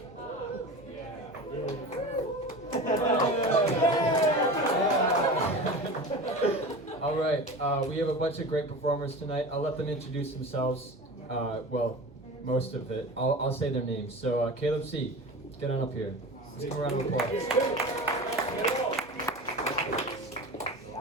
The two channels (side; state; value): right; noise; hum, 24 dB below the sound